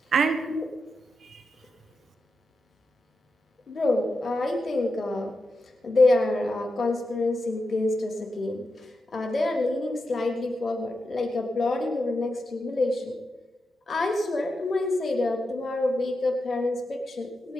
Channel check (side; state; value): both; normal; correlation 0.88